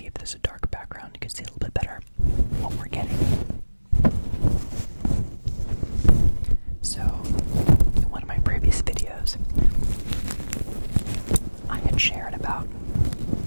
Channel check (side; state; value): both; inverted; correlation -1.00